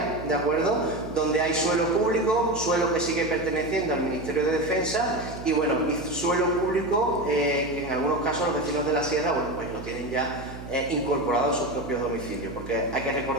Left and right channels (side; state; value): right; noise; hum, 12 dB below the sound